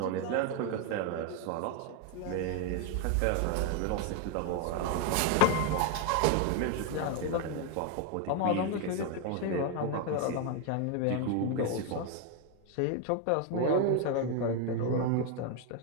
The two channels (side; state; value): both; different; correlation 0.01